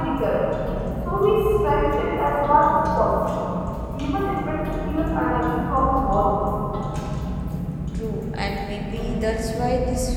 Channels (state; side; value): identical; both; correlation 1.00